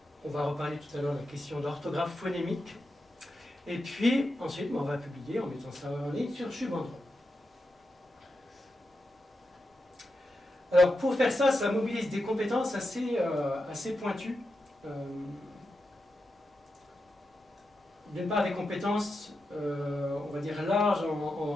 On va reparler tout à l'heure de la question d'orthographe phonémique. Et puis, ensuite, on va publier en mettant ça en ligne sur Shubandron. Alors, pour faire ça, ça mobilise des compétences assez pointues. D'une part, des compétences, on va dire, larges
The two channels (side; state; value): both; normal; correlation 0.88